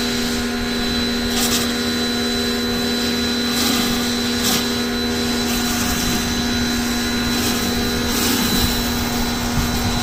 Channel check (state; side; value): identical; both; correlation 1.00